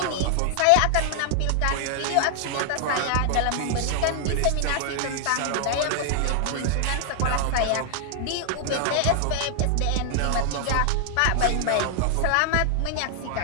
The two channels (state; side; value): different; both; correlation 0.00